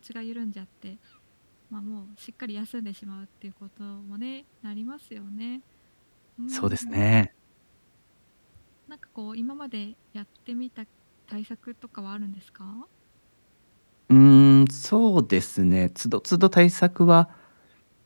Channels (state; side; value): inverted; both; correlation -1.00